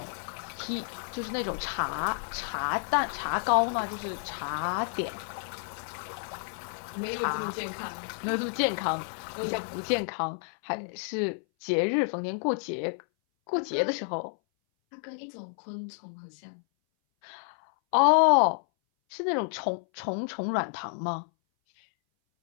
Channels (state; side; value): silent; right; 58 dB below the other